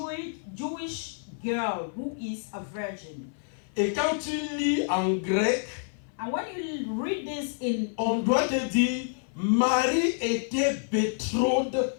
girl who is a virgin. Et quand tu lis en grec, And when you read this in on doit te dire, Marie était betrothed.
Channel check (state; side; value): silent; right; 56 dB below the other